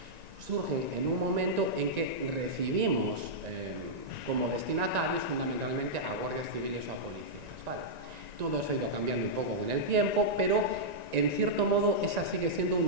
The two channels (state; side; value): late; left; 1.9 ms